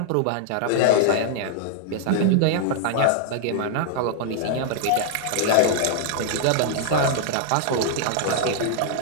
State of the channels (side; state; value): both; different; correlation -0.01